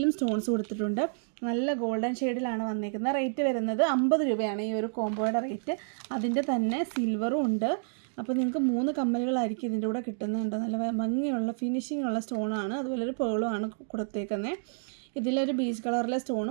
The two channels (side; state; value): left; silent; digital silence